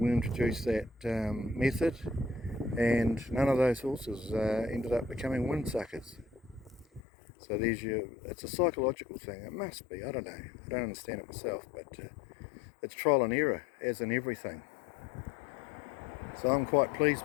introduced that method, and none of those horses ended up becoming windsuckers. So it's a psychological thing. It must be, I don't know. I don't understand it myself, but it's trial and error, as in everything. So I'm quite pleased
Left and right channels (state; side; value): drops out; right; at 7.0 s